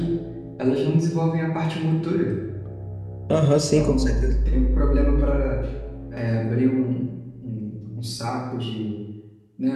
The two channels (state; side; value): identical; both; correlation 1.00